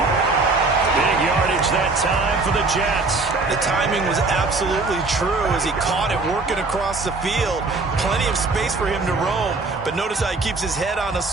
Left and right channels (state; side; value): quieter; left; 3.6 dB